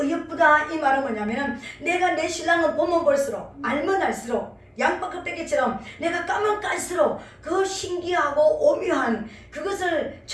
이 말은 뭐냐면은 내가 내 신랑을 보면 볼수록 알면 알수록 양파 껍데기처럼 내가 까면 깔수록 그 신기하고 오묘한 그것을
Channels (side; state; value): both; identical; correlation 1.00